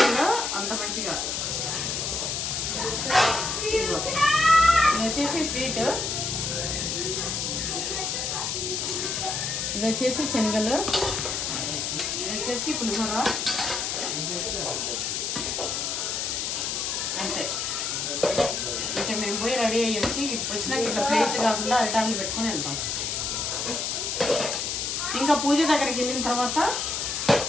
అంత మంచిగా. ఇది వచ్చేసి స్వీట్, ఇది వచ్చేసి శనగలు, ఇది వచ్చేసి పులిహోర. అంతే. ఇంకా మేము పోయి రెడీ అయ్యి వచ్చి వచ్చినాక ఇట్లా ప్లేట్లు కాకుండా అరిటాకులు పెట్టుకొని వెళ్తాం. ఇంకా పూజ దగ్గరికి వెళ్ళిన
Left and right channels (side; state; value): left; noise; hiss, 1 dB below the sound